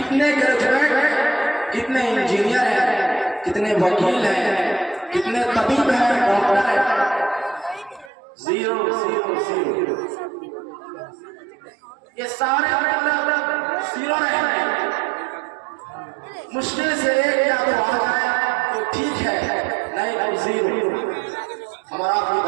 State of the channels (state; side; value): drops out; left; at 8.1 s